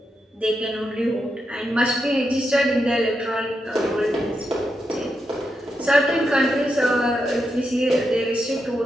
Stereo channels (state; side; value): normal; both; correlation 0.85